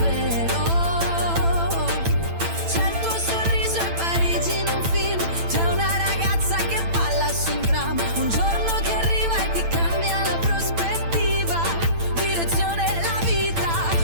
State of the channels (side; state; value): left; late; 8.9 ms